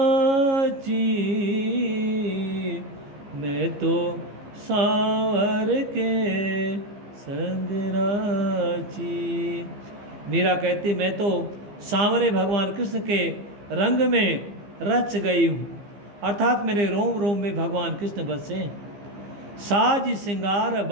मैं तो सांवर के संग राची। मीरा कहती मैं तो सांवरे भगवान कृष्ण के रंग में रच गई हूँ, अर्थात मेरे रोम रोम में भगवान कृष्ण बसे। साज सिंगार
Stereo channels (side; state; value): left; late; 15 ms